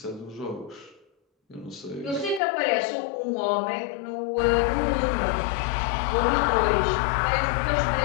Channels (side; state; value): right; drops out; at 2.4 s